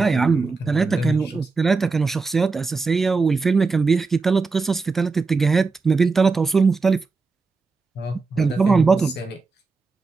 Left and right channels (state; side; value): quieter; left; 4.3 dB